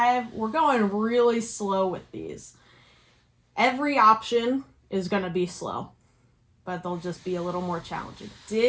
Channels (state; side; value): identical; both; correlation 1.00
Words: We're going really slow with these. Every option is going to be slow, but they'll just be a little more challenging.